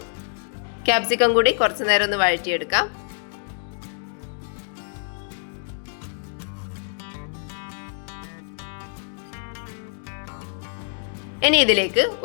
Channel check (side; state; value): right; silent; 61 dB below the other